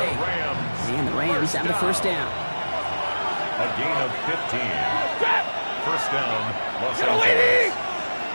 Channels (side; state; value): both; inverted; correlation -1.00